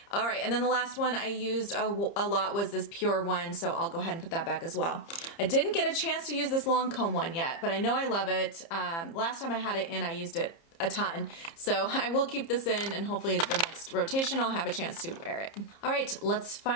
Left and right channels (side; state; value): right; late; 30 ms